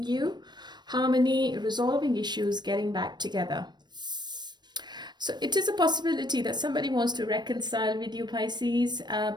you, harmony, resolving issues, getting back together. So it is a possibility that somebody wants to reconcile with you, Pisces,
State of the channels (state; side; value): late; left; 0.21 ms